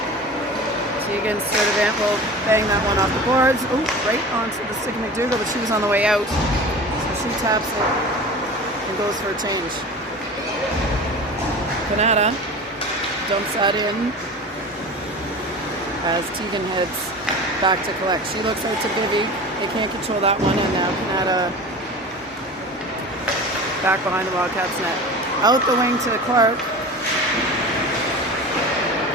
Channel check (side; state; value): both; normal; correlation 0.35